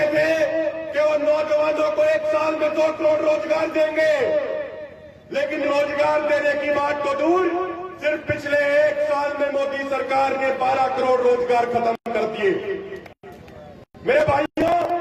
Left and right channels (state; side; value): identical; both; correlation 1.00